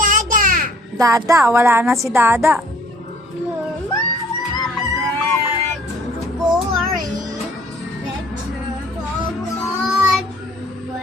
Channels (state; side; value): normal; both; correlation 0.57